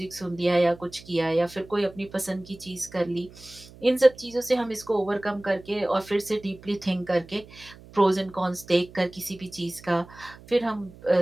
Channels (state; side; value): noise; right; hum, 21 dB below the sound